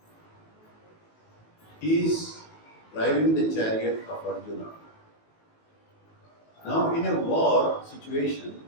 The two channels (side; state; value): right; late; 19 ms